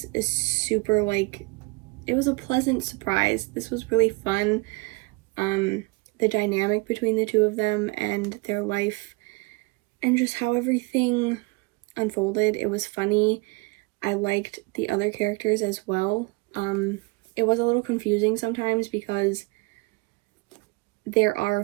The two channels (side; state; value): left; quieter; 27.5 dB